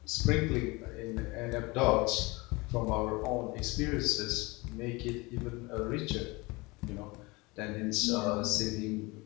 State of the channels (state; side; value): quieter; right; 24.6 dB